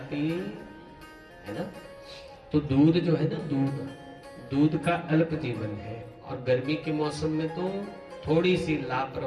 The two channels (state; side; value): identical; both; correlation 1.00